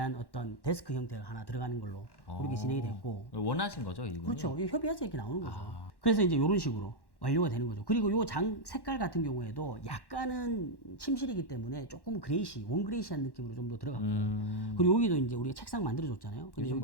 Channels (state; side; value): late; right; 1.1 ms